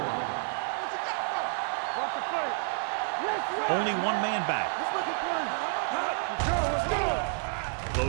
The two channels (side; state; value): left; silent; 58 dB below the other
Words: Watch the play. Only one man back. Let's go.